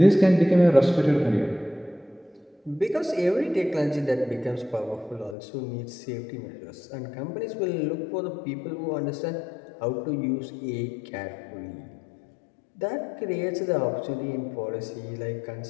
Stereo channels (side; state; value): right; drops out; at 5.4 s